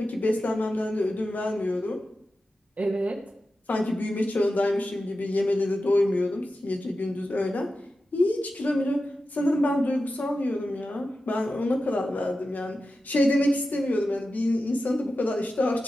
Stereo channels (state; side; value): normal; both; correlation 0.92